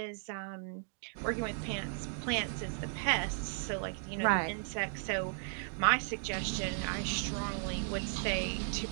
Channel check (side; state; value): left; silent; 54 dB below the other